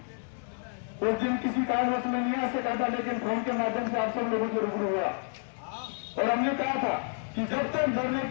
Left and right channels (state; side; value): silent; right; 58 dB below the other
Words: उस दिन किसी कारणवश में नहीं आ सका था, लेकिन फोन के माध्यम से आप सब लोगों से रूबरू हुआ और हमने कहा था कि जब तक धरने